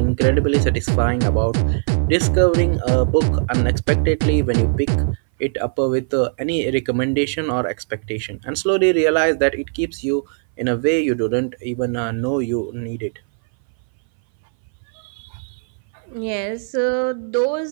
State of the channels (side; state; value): left; silent; 61 dB below the other